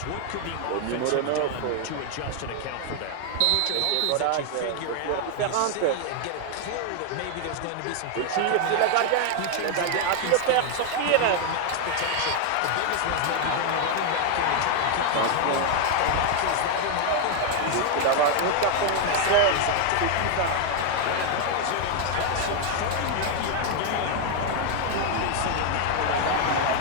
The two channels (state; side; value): different; both; correlation 0.00